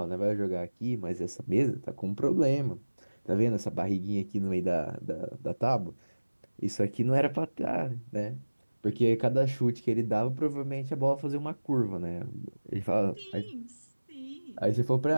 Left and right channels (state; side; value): inverted; both; correlation -1.00